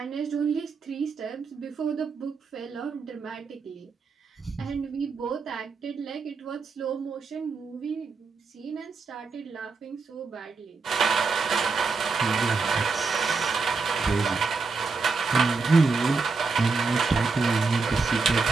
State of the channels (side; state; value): left; quieter; 4.5 dB